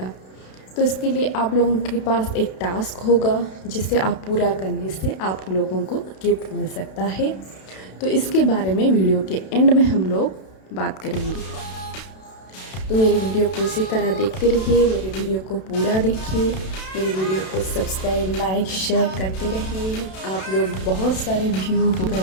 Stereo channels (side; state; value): right; late; 32 ms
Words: तो इसके लिए आप लोगों के पास एक टास्क होगा, जिसे आप पूरा करने से आप लोगों को गिफ्ट मिल सकता है। तो इसके बारे में वीडियो के एंड में हम लोग बात करेंगे। तो मेरे वीडियो को इसी तरह देखते रहिए, मेरे वीडियो को पूरा देखिए, मेरे वीडियो को सब्सक्राइब, लाइक, शेयर करते रहिए। आप लोग बहुत सारे व्यू कर